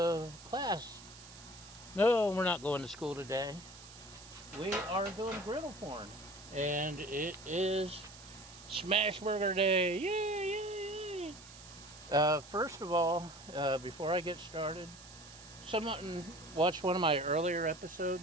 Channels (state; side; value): noise; right; hiss, 18 dB below the sound